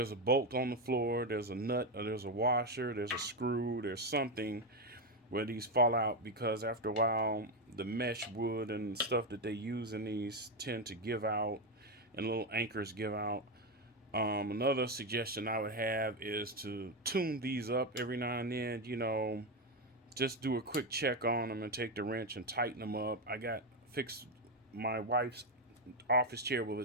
a bolt on the floor, there's a nut, or there's a washer, there's a screw, there's something where these fall out because after a while the mesh wood and stuff that they use in these tend to give out and little anchors give out. Another suggestion I would have is to tune these up every now and then, you know, just do a quick check on them and take the wrench and tighten them up. I got fixed my wife's office chair with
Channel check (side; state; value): both; normal; correlation 0.09